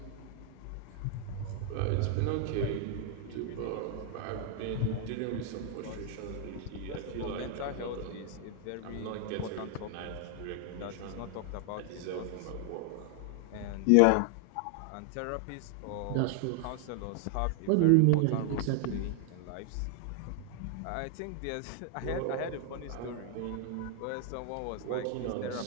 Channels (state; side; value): different; both; correlation 0.00